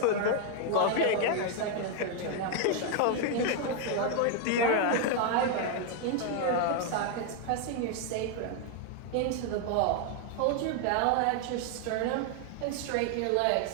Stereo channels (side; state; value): both; different; correlation 0.00